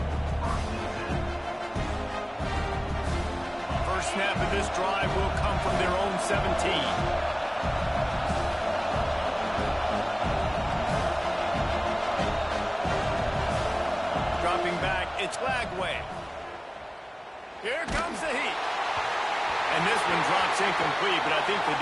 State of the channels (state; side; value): identical; both; correlation 1.00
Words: First snap of this drive will come from their own 17. Dropping back, it's Lagway. Here comes the heat. And this one drops incomplete, but I think the